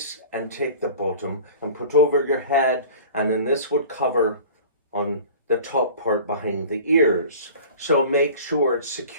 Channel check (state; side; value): inverted; both; correlation -0.41